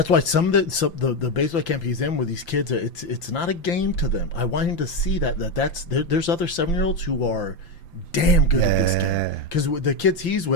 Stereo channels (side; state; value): right; late; 5.8 ms